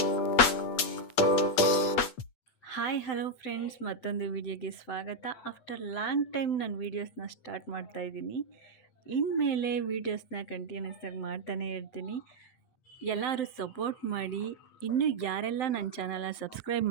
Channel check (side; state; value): right; late; 8.3 ms